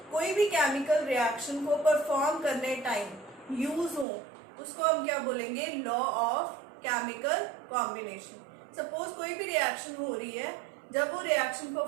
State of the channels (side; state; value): left; drops out; at 4.0 s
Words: कोई भी केमिकल रिएक्शन को परफॉर्म करने टाइम यूज हो उसको हम क्या बोलेंगे? Law of chemical combination. Suppose कोई भी रिएक्शन हो रही है, जब वो रिएक्शन